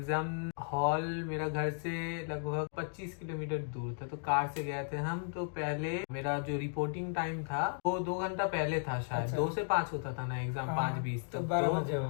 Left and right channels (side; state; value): right; silent; digital silence